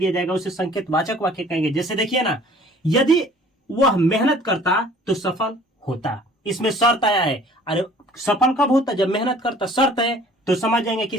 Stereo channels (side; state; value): both; normal; correlation 0.52